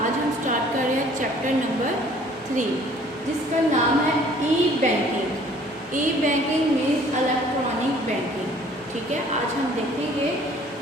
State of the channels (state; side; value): normal; both; correlation 0.55